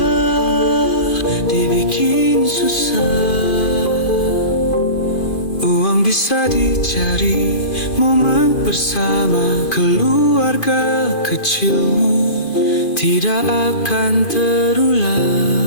dibikin susah. Uang bisa dicari, momen bersama keluarga kecilmu tidak akan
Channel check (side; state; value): right; late; 2.5 ms